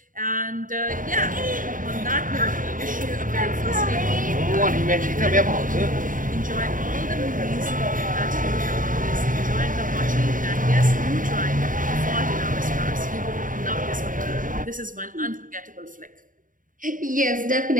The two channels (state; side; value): late; left; 0.39 ms